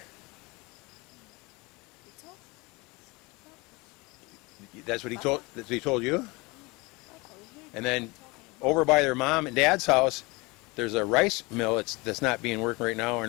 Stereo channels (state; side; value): quieter; right; 25.0 dB